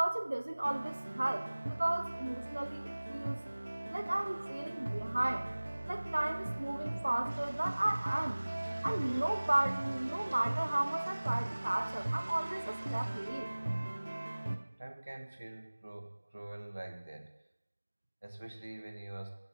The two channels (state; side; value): inverted; both; correlation -1.00